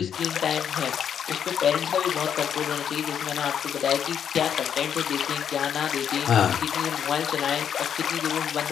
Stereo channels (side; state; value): right; quieter; 8.5 dB